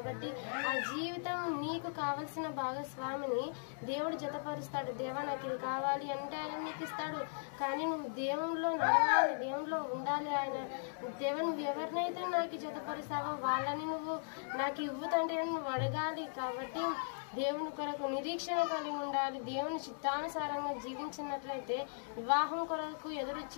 ఆ జీవితం నీకు కావలసిన భాగస్వామిని దేవుడు జతపరుస్తాడు. దేవా నాకు ఇది కావాలి అంటే ఆయన నీకు ఇస్తాడు. కానీ నువ్వు దేవునిలో నడవాలి, దేవునిలో ఉండాలి. ఆయన దేవుని నువ్వు ఎవరినైతే నాకు జతపరుస్తావో వాళ్ళని నువ్వు నాకు ఇవ్వుతంటే నువ్వు అడగాలి. కాబట్టి దేవుని కొరకు నిరీక్షణ కలిగి ఉండాలి. దేవుని చిత్తానుసారంగా జీవించినట్లయితే వివాహం కొరకు ఎదురు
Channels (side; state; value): right; silent; digital silence